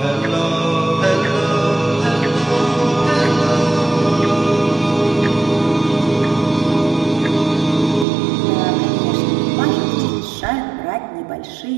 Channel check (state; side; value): drops out; left; at 8.1 s